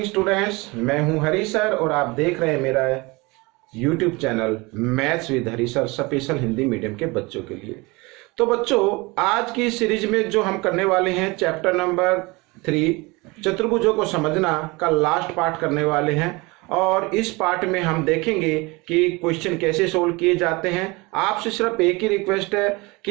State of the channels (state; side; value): quieter; left; 24.8 dB